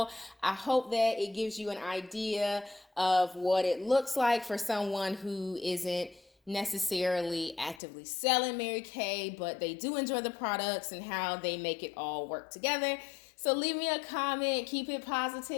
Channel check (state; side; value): drops out; right; at 7.8 s